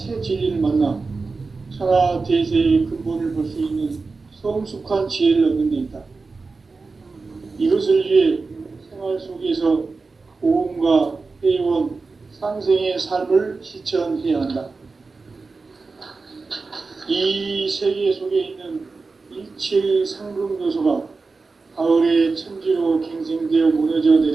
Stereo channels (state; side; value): quieter; left; 4.1 dB